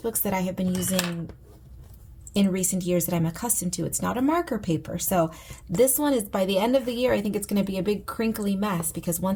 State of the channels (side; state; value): both; identical; correlation 1.00